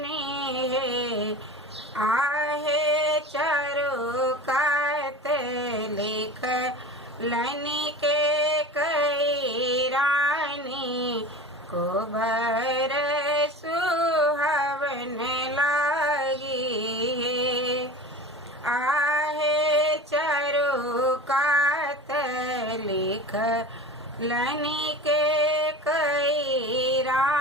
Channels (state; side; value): normal; both; correlation 0.34